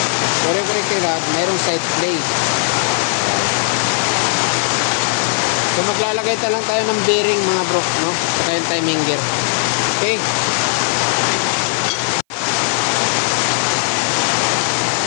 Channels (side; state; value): right; silent; 58 dB below the other